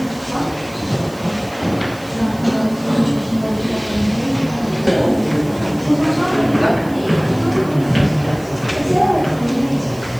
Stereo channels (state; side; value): noise; right; hiss, 22 dB below the sound